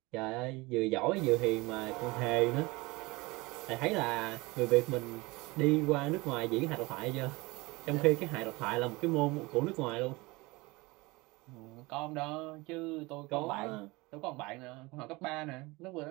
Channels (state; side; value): quieter; left; 23.3 dB